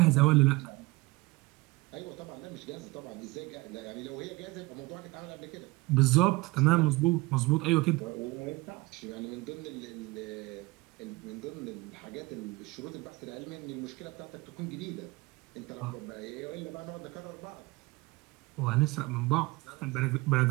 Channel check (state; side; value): quieter; left; 22.8 dB